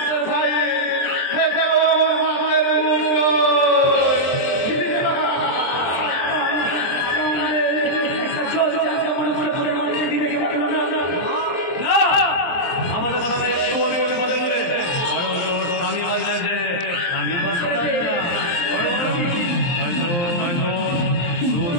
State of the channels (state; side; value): late; right; 23 ms